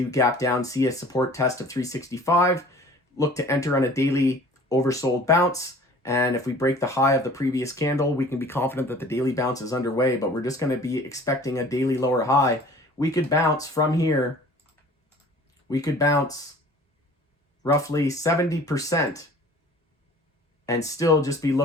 gap down, see a support test of 365, look to enter on a daily oversold bounce. And if we break the high of the previous candle, we can be confident that the daily bounce is underway, but we're just going to be expecting a daily lower high. We could bounce from here. We could bounce roughly 70% and still just be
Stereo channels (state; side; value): normal; both; correlation 0.47